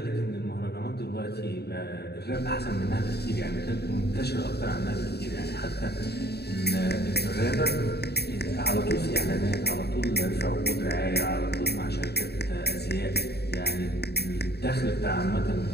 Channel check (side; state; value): right; late; 0.48 ms